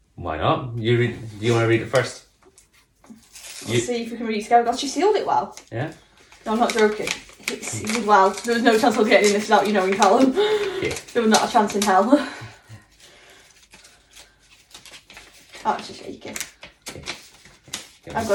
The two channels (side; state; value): both; identical; correlation 1.00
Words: Why not? You read. Do you want to read it first? Let's see if we can read it together. God, she sealed it well. Yeah. No, I'm not joking. It's sealed well. There was no chance of getting this without you knowing, Callum. Yeah. There was not a chance in hell. Oh, it's just shaking. Okay. I've